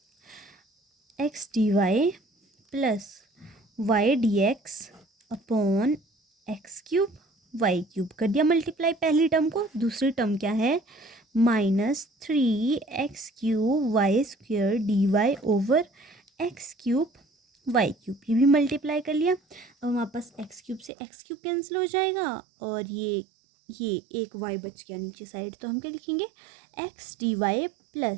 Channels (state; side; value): drops out; left; at 20.9 s